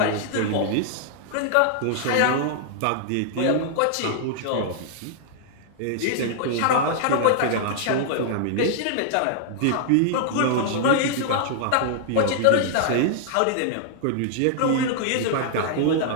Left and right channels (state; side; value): different; both; correlation -0.01